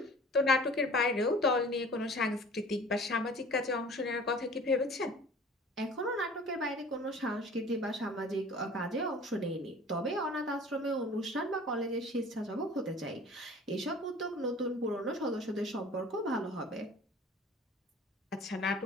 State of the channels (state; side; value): normal; both; correlation 0.46